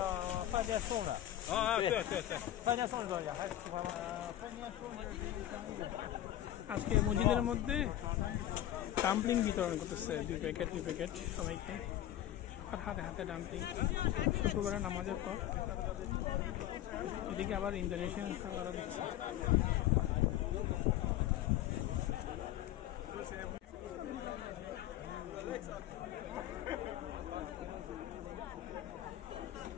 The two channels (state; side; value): quieter; right; 12.8 dB